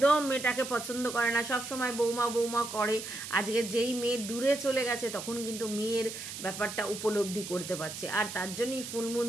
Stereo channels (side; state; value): right; noise; hiss, 9 dB below the sound